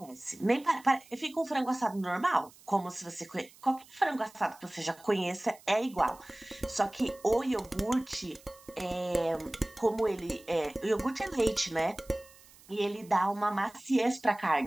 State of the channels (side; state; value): right; noise; hiss, 24 dB below the sound